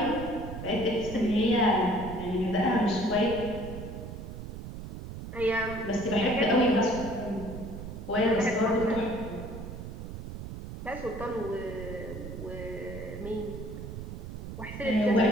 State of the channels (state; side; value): noise; right; rumble, 9 dB below the sound